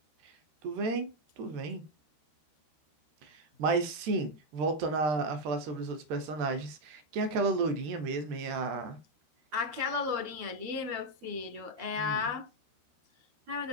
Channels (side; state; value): left; late; 13 ms